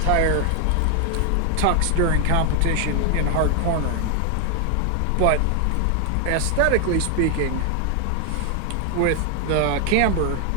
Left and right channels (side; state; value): both; different; correlation 0.00